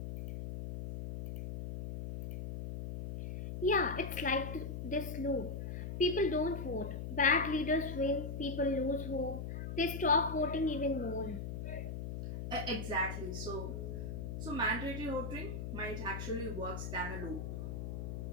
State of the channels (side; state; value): left; noise; hum, 5 dB below the sound